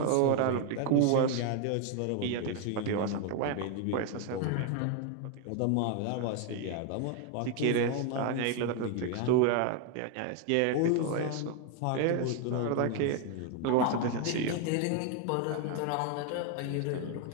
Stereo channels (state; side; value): different; both; correlation 0.01